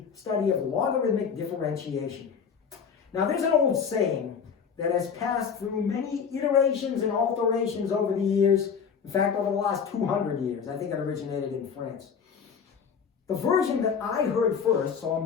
study of logarithmic differentiation. Now, there's an old saying that has passed through many iterations and alterations over the years. In fact, over the last 200 years. I think it originated in France. The version that I heard first, so I'm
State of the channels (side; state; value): right; quieter; 6.6 dB